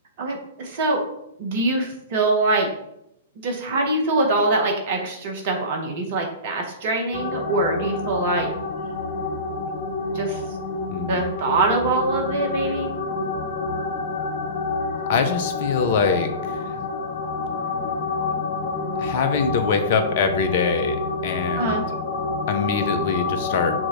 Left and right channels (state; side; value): inverted; both; correlation -0.31